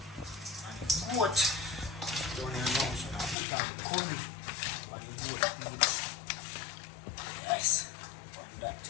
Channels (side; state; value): right; drops out; at 3.4 s